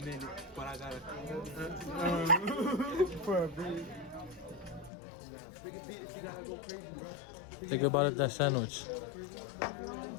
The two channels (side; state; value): right; drops out; at 4.9 s